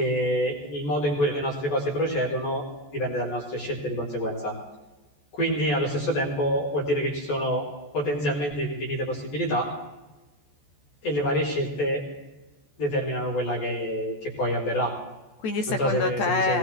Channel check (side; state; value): right; late; 14 ms